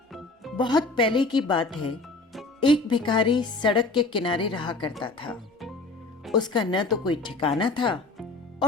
बहुत पहले की बात है। एक भिखारी सड़क के किनारे रहा करता था। उसका न तो कोई ठिकाना था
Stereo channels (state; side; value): quieter; right; 3.3 dB